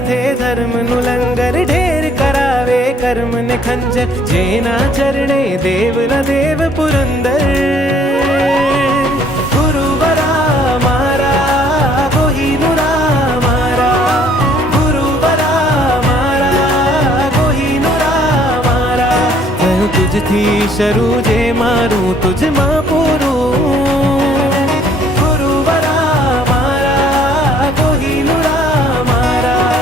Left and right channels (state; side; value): normal; both; correlation 0.61